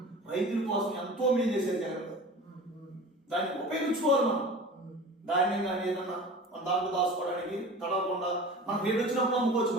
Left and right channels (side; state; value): both; normal; correlation 0.37